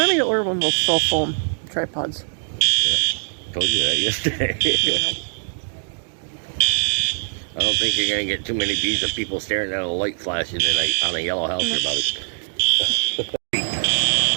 me to order one of those cell phone tripods. Yeah, told you that yesterday. I don't think you're going to get too many views of people staring at a light flashing on a yellow house or about it.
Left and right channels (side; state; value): left; silent; digital silence